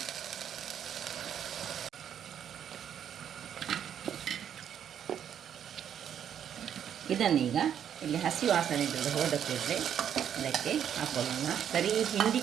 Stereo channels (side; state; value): left; quieter; 9.1 dB